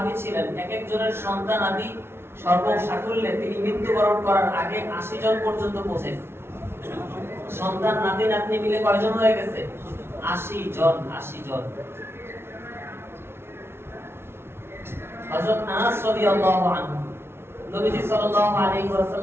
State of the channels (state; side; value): late; left; 0.12 ms